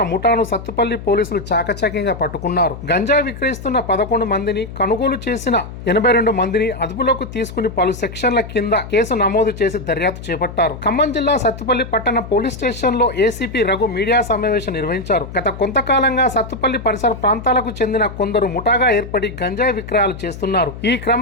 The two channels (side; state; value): left; noise; hum, 12 dB below the sound